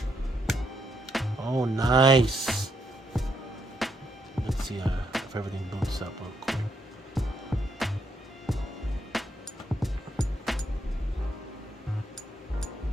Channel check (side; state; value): both; normal; correlation 0.77